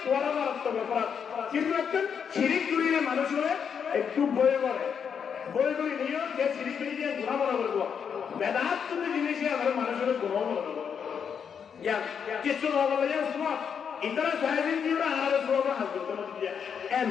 বড় মারাত্মক অপরাধ কিন্তু একটা শিরিক করিলে মানুষ হলে একটু ভয় করে নিয়ে যে শিরিক করিয়ে গুনাহ মনে করব বেদাত তো জিনিস আমার মানুষের গুনাহ মনে করব ইয়া কিছু না বলে ইয়া সুবহান ইতরা সাহেবিন দিরা আর সুবহান হাজরত দিয়া এন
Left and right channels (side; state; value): right; quieter; 7.2 dB